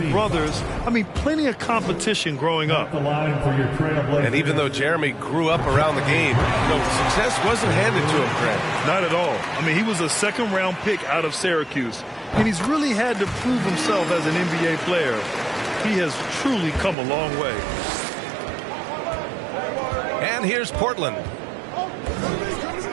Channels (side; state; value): left; drops out; at 16.9 s